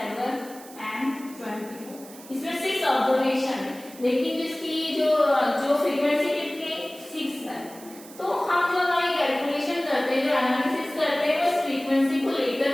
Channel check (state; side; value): noise; right; hiss, 19 dB below the sound